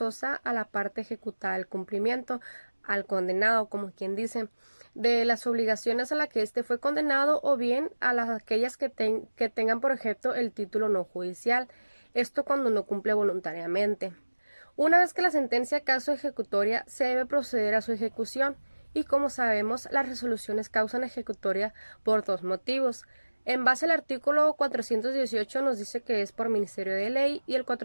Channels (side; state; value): both; inverted; correlation -1.00